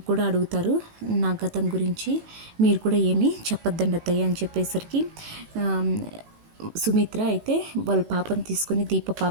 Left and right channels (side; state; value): left; late; 18 ms